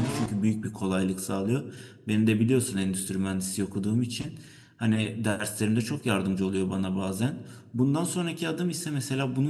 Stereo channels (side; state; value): both; identical; correlation 1.00